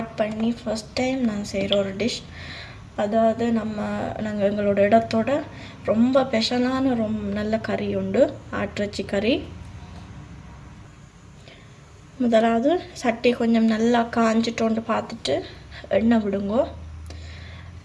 பண்ணி ஃபர்ஸ்ட் டைம் நான் செய்கிற ஒரு டிஷ். அதாவது நாங்கள் எங்களோட இடத்தோட ரொம்ப ஸ்பெஷலான நல்ல கறி உண்டு, ஆட்டிறைச்சி கறி. முதலாவது சட்டி கொஞ்சம் நல்லா காஞ்சிட்டோண்டு பார்த்துட்டு எண்ணெய் விடுங்கோ.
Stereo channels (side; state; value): both; identical; correlation 1.00